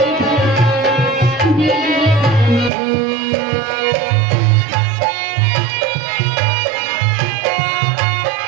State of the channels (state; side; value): drops out; left; at 2.7 s